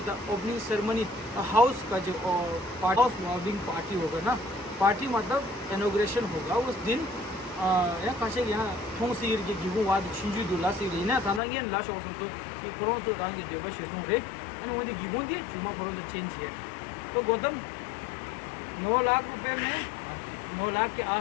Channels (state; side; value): drops out; right; at 11.4 s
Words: ओपनिंग सेरेमनी हाउस का जो हाउस वार्मिंग पार्टी होगा ना, पार्टी मतलब इनॉग्रेशन होगा उस दिन या काशे यहाँ थोंग सीर के गिगुं वाद छिंजू दुला सीर ना थाना ये लाश औसम तो कि कोरोना तो रंग देवा शिशु रे एंड मुझे गिगुं दी जुम्मा कोरोना चेंज है। तो गौतम 9 लाख रुपए में 9 लाख के